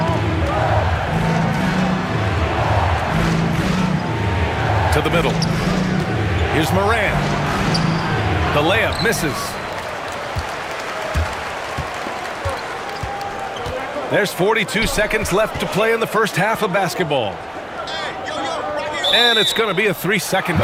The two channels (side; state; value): both; identical; correlation 1.00